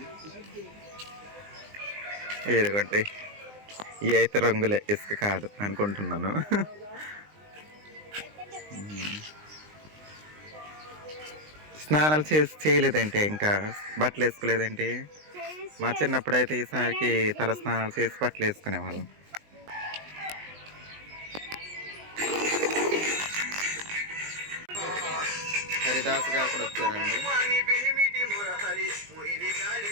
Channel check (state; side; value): late; left; 20 ms